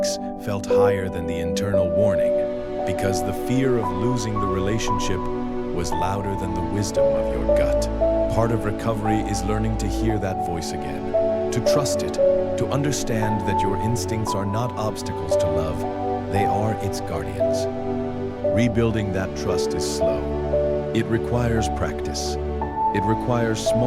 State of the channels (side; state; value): both; identical; correlation 1.00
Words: felt higher than the internal warning, because the fear of losing the relationship was louder than the wisdom of your gut. Part of recovery is learning to hear that voice again, to trust it, to understand that your instincts are not obstacles to love, they are its guardians. Rebuilding that trust is slow. It requires practice. It requires